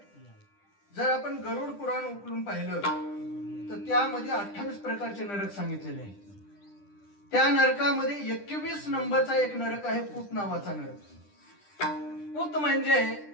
जर आपण गरुड पुराण उकलून पाहिलं तर त्यामध्ये 28 प्रकारचे नरक सांगितलेले आहेत. त्या नरकामध्ये 21 नंबरचा एक नरक आहे, पूत नावाचा नरक. पूत म्हणजे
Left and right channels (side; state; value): right; late; 10 ms